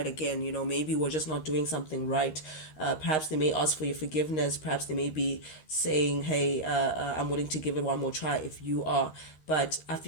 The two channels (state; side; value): late; right; 13 ms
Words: again. Maybe we're just not doing something right. Perhaps they may ask for your forgiveness. Perhaps they may be saying, hey, I'm willing to give it one more try if you are. But I